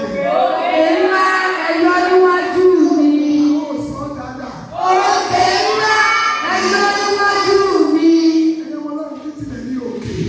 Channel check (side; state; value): both; identical; correlation 1.00